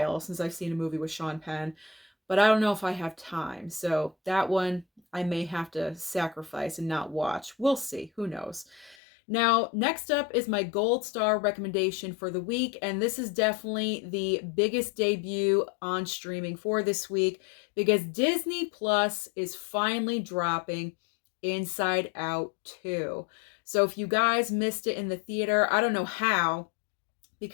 since I've seen a movie with Sean Penn, but I don't know if I have time. So that one I may have to sacrifice and not watch. We'll see. Who knows? Now, next up is my gold star recommendation for the week, and this is definitely the biggest debut on streaming for this week because Disney Plus is finally dropping Inside Out 2. So if you guys missed it in the theater, I don't know how,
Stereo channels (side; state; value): right; drops out; at 9.0 s